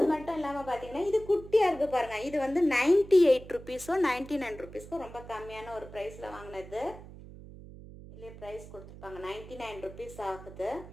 மட்டும் இல்லாமல் பார்த்தீங்கன்னா இது குட்டியாக இருக்குது பாருங்கள். இது வந்து 98 ருபீஸோ 99 ருபீஸ்க்கோ ரொம்ப கம்மியான ஒரு ப்ரைஸில் வாங்கினது. இல்லையே ப்ரைஸ் கொடுத்துருப்பாங்க, 99 ருபீஸ் ஆகுது.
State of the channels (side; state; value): right; noise; hum, 16 dB below the sound